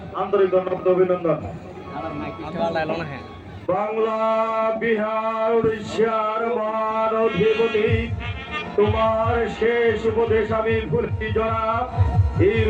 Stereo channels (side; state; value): both; identical; correlation 1.00